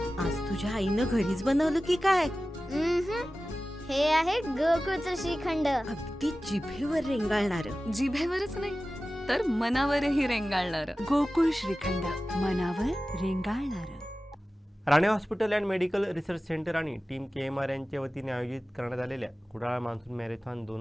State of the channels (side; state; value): both; normal; correlation 0.96